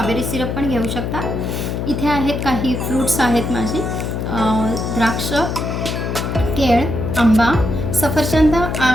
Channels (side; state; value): left; noise; hum, 3 dB below the sound